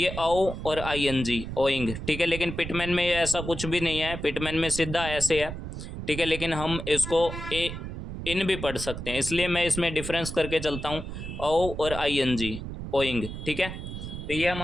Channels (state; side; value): noise; right; rumble, 8 dB below the sound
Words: ओ और आई एन जी ओइंग, ठीक है। लेकिन पिटमैन में ऐसा कुछ भी नहीं है, पिटमैन में सीधा ऐसे है, ठीक है, लेकिन हम इसको ए इन भी पढ़ सकते हैं, इसलिए मैं इसमें डिफरेंस करके चलता हूँ, ओ और आई एन जी ओइंग, ठीक है। तो ये